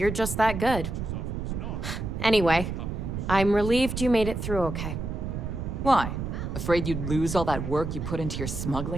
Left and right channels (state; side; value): noise; right; rumble, 4 dB below the sound